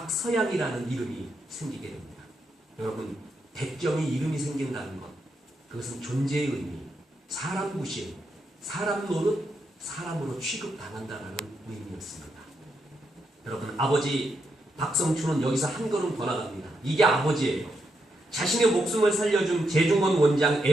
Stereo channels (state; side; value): normal; both; correlation 0.82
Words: 이름이 생기게 됩니다. 여러분, 백정이 이름이 생긴다는 것, 그것은 존재의 의미, 사람 무시, 사람 노릇, 사람으로 취급당한다는 의미였습니다. 여러분, 아버지 박성춘은 여기서 한 걸음 더 나갑니다. 이게 아버지예요. 자신의 목숨을 살려준 제중원 원장